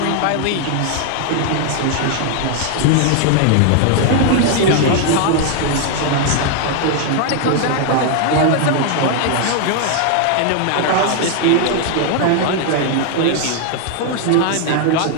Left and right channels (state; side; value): different; both; correlation 0.00